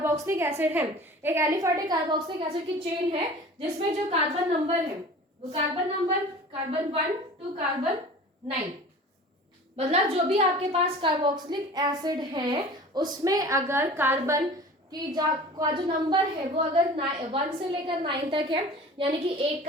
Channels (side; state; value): both; normal; correlation 0.41